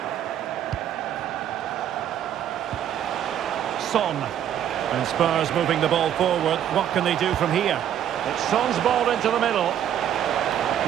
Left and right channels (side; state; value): left; quieter; 10.3 dB